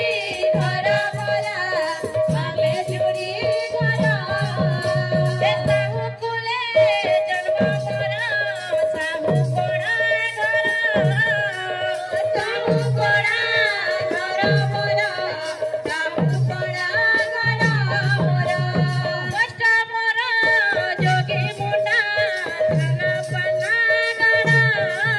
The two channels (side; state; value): both; identical; correlation 1.00